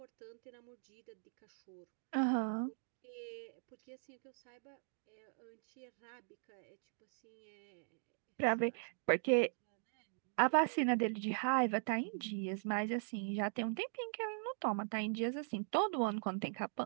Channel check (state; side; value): silent; left; digital silence